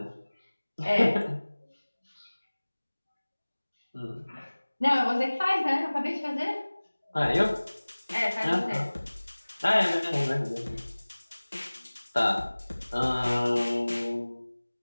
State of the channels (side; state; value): both; inverted; correlation -1.00